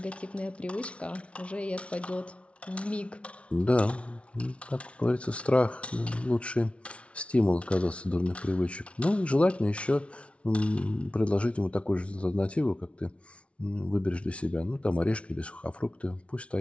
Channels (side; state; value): right; late; 0.061 ms